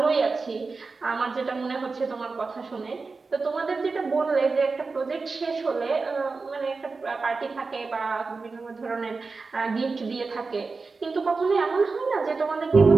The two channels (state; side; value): quieter; left; 4.2 dB